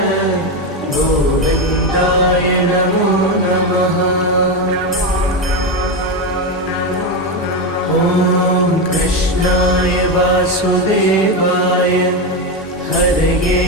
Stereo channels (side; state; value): both; normal; correlation 0.12